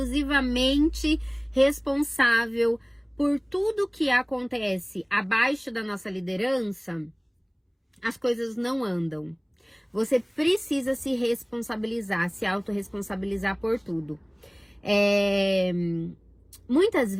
responsável por tudo que acontece abaixo da nossa liderança, as coisas não andam. Você precisa se responsabilizar, se autorresponsabilizar por tudo. Muitas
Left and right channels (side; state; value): both; identical; correlation 1.00